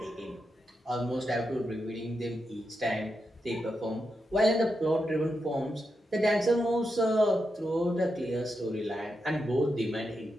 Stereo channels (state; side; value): normal; both; correlation 0.86